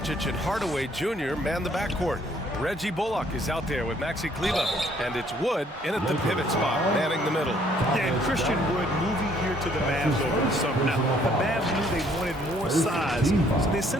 and Hardaway Jr. man the backcourt. Reggie Bullock is out there with Maxi Kleba, and it's Wood in at the pivot spot, manning the middle. Yeah, and Christian Wood moving here to the Mavs over the summer. Now, the Mavs knew they wanted more size, so they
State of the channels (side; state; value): both; normal; correlation 0.64